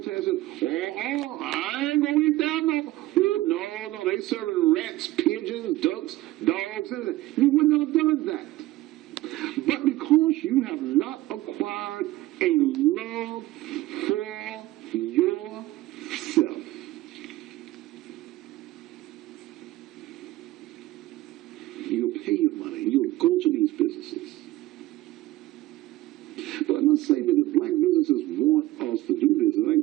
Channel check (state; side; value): quieter; left; 17.2 dB